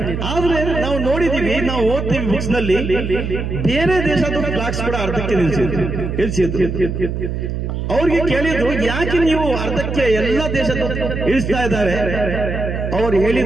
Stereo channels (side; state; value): right; noise; hum, 3 dB below the sound